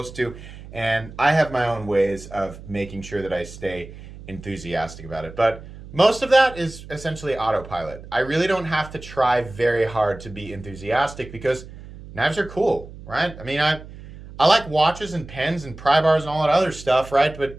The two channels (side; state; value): right; noise; hum, 16 dB below the sound